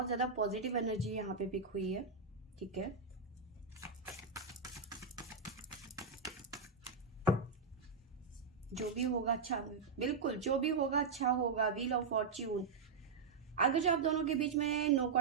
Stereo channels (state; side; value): quieter; left; 5.2 dB